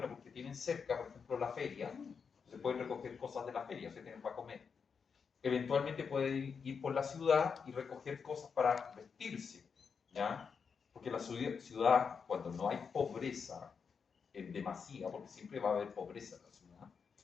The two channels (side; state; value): right; quieter; 6.0 dB